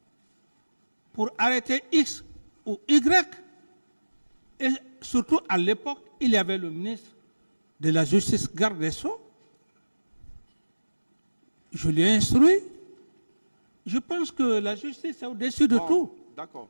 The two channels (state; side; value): inverted; both; correlation -1.00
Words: pour arrêter X ou Y. Et surtout à l'époque, il y avait le ministre de la Justice, garde des Sceaux. Je l'ai instruit. Je pense que la justice est au-dessus de tout. D'accord.